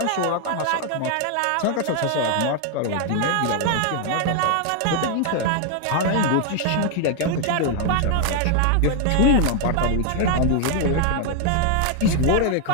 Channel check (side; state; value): both; different; correlation 0.00